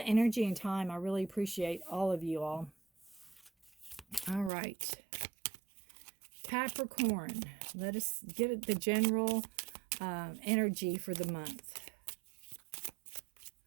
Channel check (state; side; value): drops out; left; at 4.5 s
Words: and time. I really appreciate all of you all. All right. Capricorn, let us get the general energy for the month.